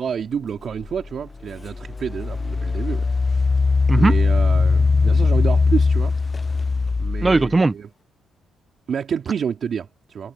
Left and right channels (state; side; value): normal; both; correlation 0.91